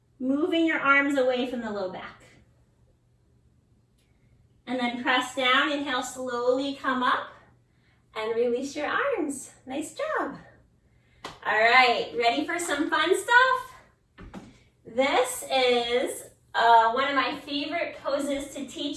moving your arms away from the low back. And then press down, inhale, slowly come up, and release your arms. Nice job. All right, ready for some fun stuff? This is one of my favorite poses to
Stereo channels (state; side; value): identical; both; correlation 1.00